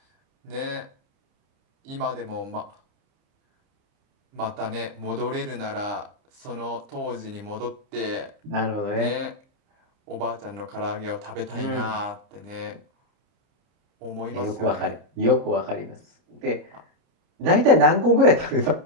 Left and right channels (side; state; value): left; late; 30 ms